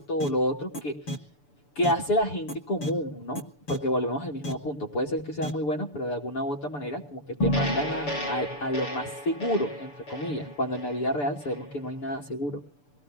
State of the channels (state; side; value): late; right; 6.9 ms